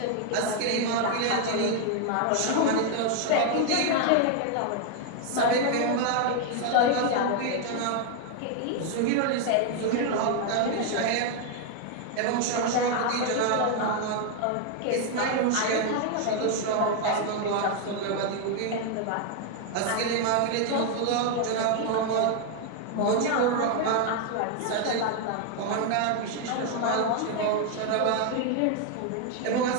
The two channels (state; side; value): different; both; correlation 0.00